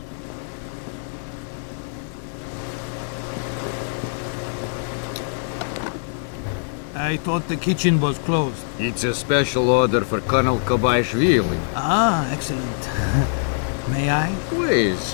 I thought the kitchen was closed. It's a special order for Colonel Kobaishvili. Ah, excellent. May I?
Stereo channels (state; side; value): silent; right; digital silence